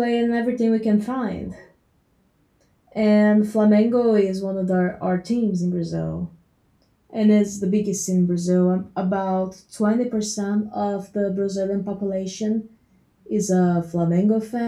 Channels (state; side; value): identical; both; correlation 1.00